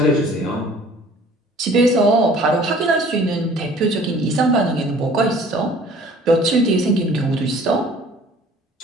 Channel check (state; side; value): normal; both; correlation 0.51